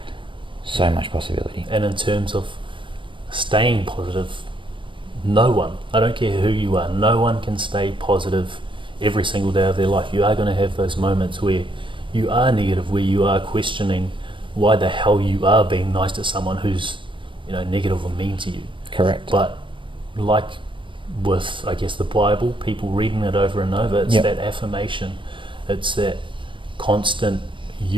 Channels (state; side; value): late; left; 0.24 ms